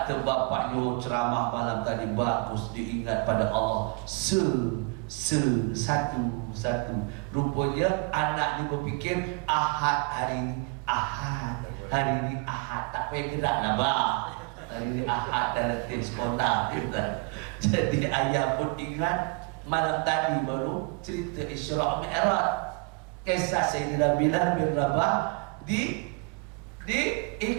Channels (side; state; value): left; quieter; 30.8 dB